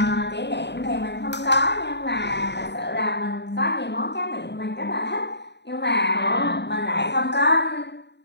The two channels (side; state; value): right; late; 0.50 ms